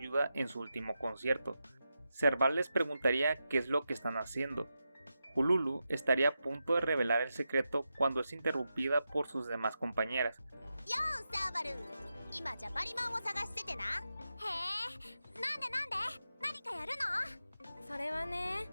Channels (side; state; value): both; inverted; correlation -0.89